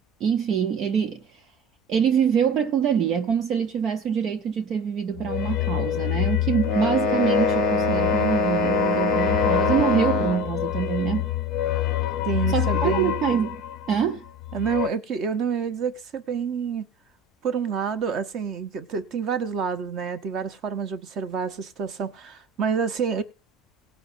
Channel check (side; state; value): both; normal; correlation 0.36